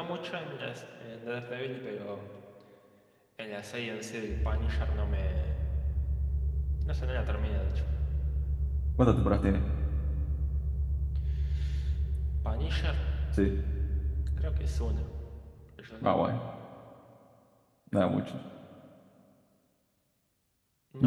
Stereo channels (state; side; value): identical; both; correlation 1.00